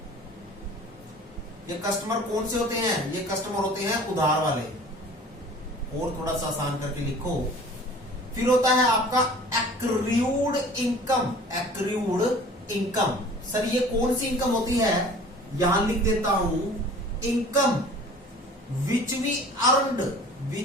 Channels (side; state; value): both; normal; correlation 0.45